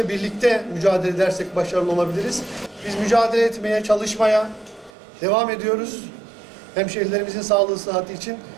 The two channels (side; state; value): left; drops out; at 4.9 s